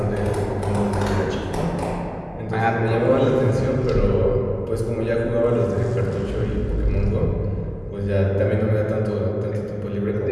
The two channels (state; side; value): identical; both; correlation 1.00